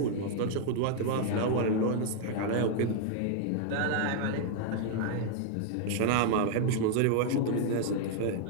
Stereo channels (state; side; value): different; both; correlation 0.00